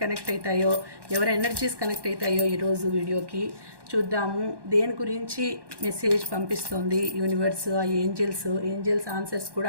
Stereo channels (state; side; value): late; left; 1.1 ms